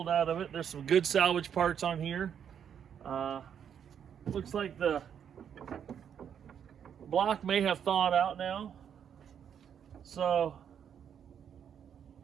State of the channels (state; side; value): quieter; left; 8.4 dB